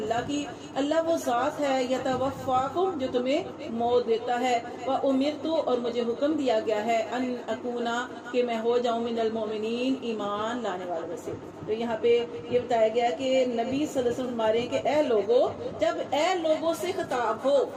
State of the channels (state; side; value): identical; both; correlation 1.00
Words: کی، اللہ وہ ذات ہے، یتوفاکم جو تمہیں موت دیتا ہے، وامرت اور مجھے حکم دیا گیا ہے، ان اکونا کہ میں ہو جاؤں من المؤمنین ایمان لانے والوں میں سے۔ تو یہاں پہ یہ بتایا گیا کہ نبی صلی اللہ علیہ وسلم ہمارے کہ اے لوگوں، جب اے لوگوں سے خطاب ہو